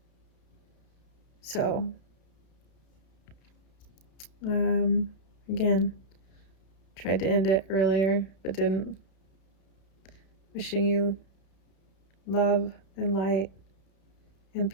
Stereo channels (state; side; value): late; right; 32 ms